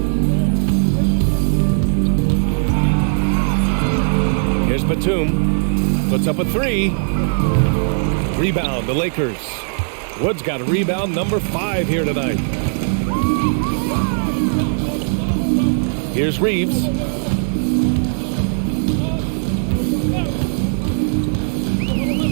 Here's Batum. Puts up a 3. Rebound, the Lakers. Wood's got a rebound number 5 here tonight. Here's Reeves.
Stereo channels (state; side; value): silent; left; 62 dB below the other